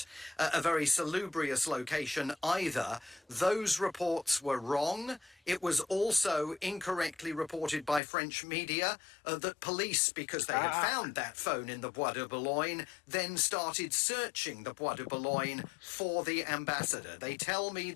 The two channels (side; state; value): right; drops out; at 8.0 s